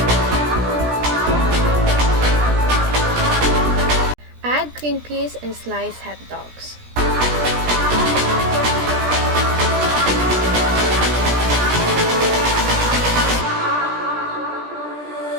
Add green peas and sliced hot dogs.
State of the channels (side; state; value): left; late; 17 ms